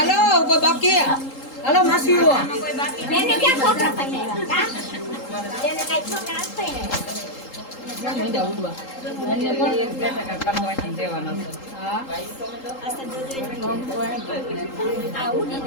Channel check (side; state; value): right; late; 3.8 ms